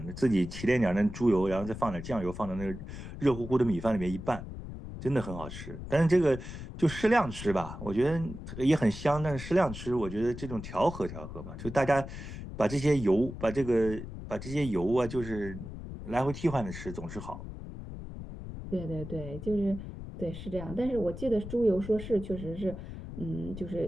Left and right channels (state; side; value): noise; left; rumble, 10 dB below the sound